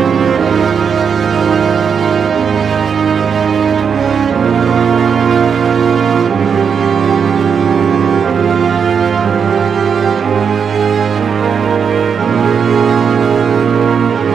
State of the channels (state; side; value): quieter; left; 6.6 dB